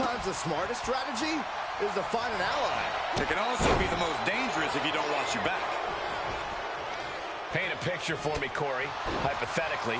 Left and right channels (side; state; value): both; identical; correlation 1.00